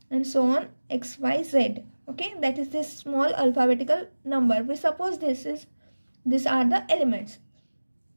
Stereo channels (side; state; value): both; inverted; correlation -1.00